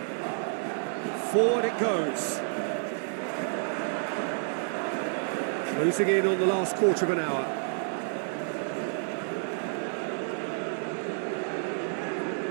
Forward it goes. Closing in on the last quarter of an hour.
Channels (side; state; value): left; silent; 58 dB below the other